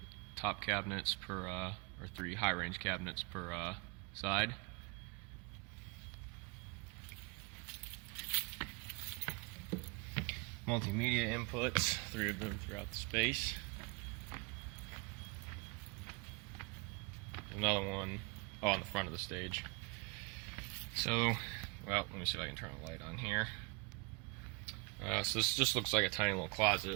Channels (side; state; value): left; quieter; 29.1 dB